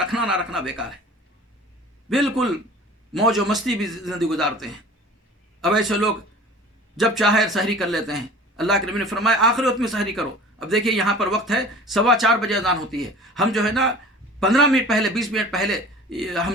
نہ رکھنا بیکار ہے. بالکل موج و مستی بھی زندگی گزارتے ہیں. اب ایسے لوگ جب چاہے سحری کر لیتے ہیں. اللہ کے نبی نے فرمایا آخری وقت میں سحری کرو. اب دیکھیے یہاں پر وقت ہے 4:15 بجے اذان ہوتی ہے. ہم جو ہے نا 15 منٹ پہلے، 20 منٹ پہلے ہم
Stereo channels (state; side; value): normal; both; correlation 0.42